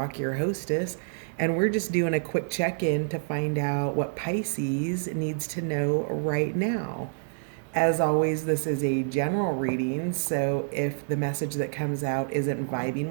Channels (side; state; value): left; silent; digital silence